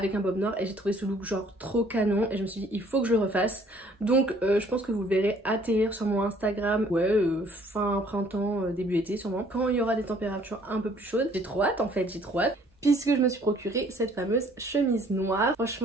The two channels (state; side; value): normal; both; correlation 0.59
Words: un bob noir et j'ai trouvé ce look genre trop canon et je me suis dit il faut que je le refasse. Donc je pense que vous le verrez atterrir sur mon Instagram, ouais fin printemps, début été sûrement, quand il y aura des températures un peu plus chaudes. J'ai trop hâte en fait, j'ai trop hâte. Puisque je me suis procuré cette fameuse chemise noire.